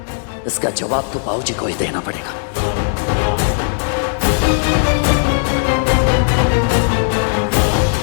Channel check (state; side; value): silent; right; digital silence